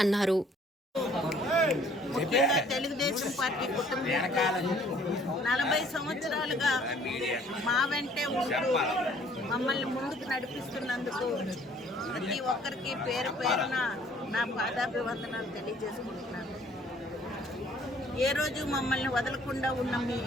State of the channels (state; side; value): normal; both; correlation 0.58